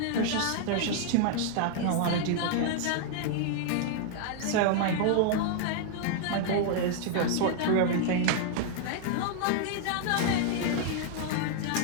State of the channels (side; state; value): both; different; correlation -0.01